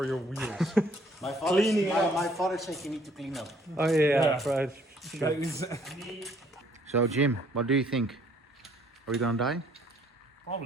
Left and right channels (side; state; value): both; normal; correlation 0.62